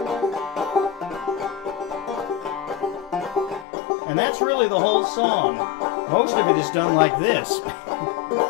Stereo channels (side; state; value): right; drops out; at 3.7 s